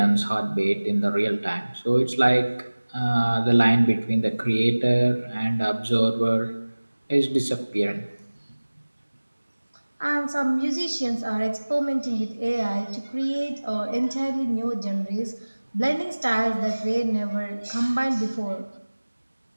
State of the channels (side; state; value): both; inverted; correlation -1.00